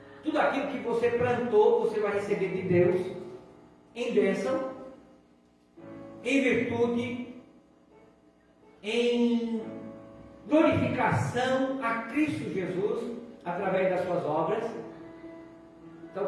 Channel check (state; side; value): identical; both; correlation 1.00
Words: Tudo aquilo que você plantou, você vai receber de Deus em bênção, em virtude, em glorificação a Cristo Jesus através das suas obras. Então,